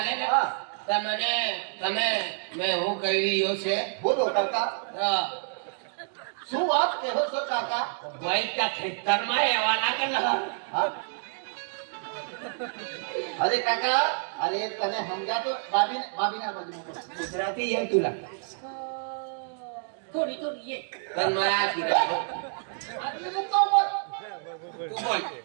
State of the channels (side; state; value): left; silent; 59 dB below the other